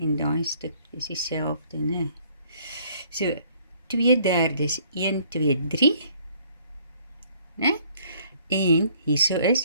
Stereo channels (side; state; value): both; inverted; correlation -0.61